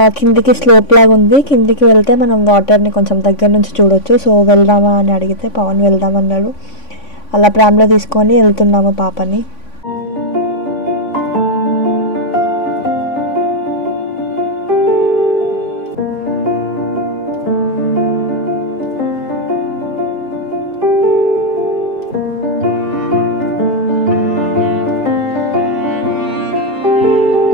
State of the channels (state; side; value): late; right; 3.5 ms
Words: కిందికి స్లోప్ లాగా ఉంది, కిందికి వెళ్తే మనం వాటర్ని కొంచెం దగ్గర నుంచి చూడొచ్చు. సో వెళ్దామా అని అడిగితే పవన్ వెళ్దామన్నాడు. అలా ప్రామ్లో తీసుకొని వెళ్తున్నాము పాపని.